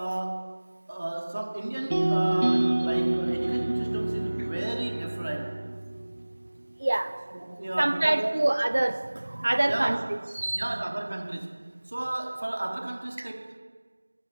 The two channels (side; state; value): both; inverted; correlation -1.00